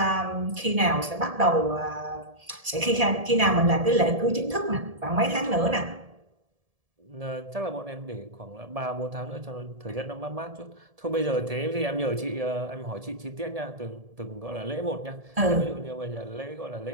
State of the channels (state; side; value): late; left; 1.7 ms